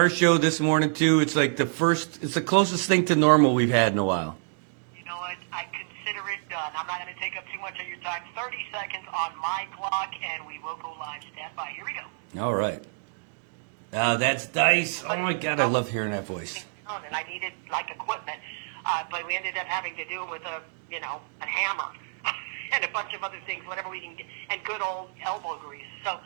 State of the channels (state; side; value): silent; left; digital silence